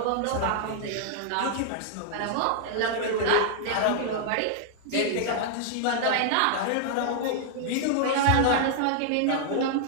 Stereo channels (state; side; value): different; both; correlation 0.00